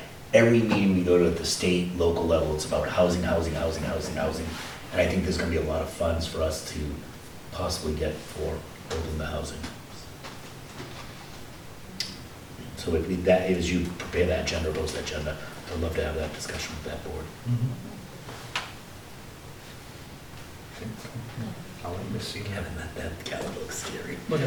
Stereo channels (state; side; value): identical; both; correlation 1.00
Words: every meeting we go to at the state, local level, it's about housing, housing, housing, housing, housing. And I think there's gonna be a lot of funds for us to possibly get for building the housing. So if that, as you prepare that agenda, post that agenda, I'd love to have that discussion with that board. I'll let you see. Kevin, that Kevin looks scary. Look